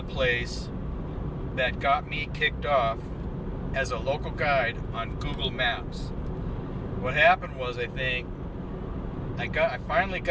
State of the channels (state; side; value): identical; both; correlation 1.00